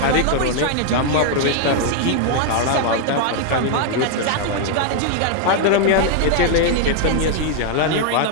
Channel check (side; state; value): both; different; correlation 0.00